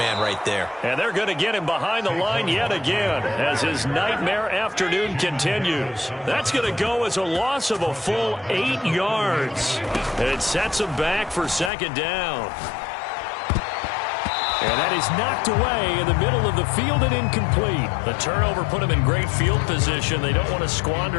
right there. And they're going to get him behind the line yet again as his nightmare afternoon continues. That's going to go as a loss of a full 8 yards. It sets him back for 2nd down. And that is knocked away in the middle of the field and incomplete. The turnover put them in great field position. They don't want to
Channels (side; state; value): right; drops out; at 11.7 s